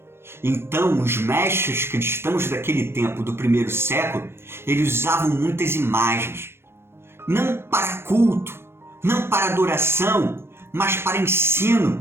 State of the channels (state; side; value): late; left; 0.12 ms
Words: Então, os mestres cristãos daquele tempo, do primeiro século, eles usavam muitas imagens, não para culto, não para adoração, mas para